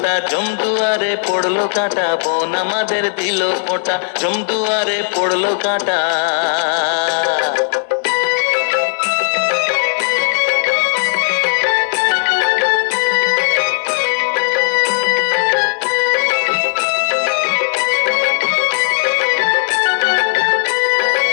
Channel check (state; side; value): silent; right; digital silence